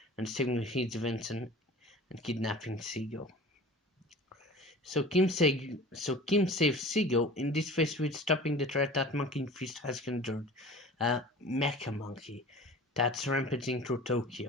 and stealing his invention and kidnapping Seagull. So Kim saves Seagull, in this phase with stopping the threat that Monkey Fist has conjured, a mecha monkey that's rampaging through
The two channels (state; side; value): normal; both; correlation 0.41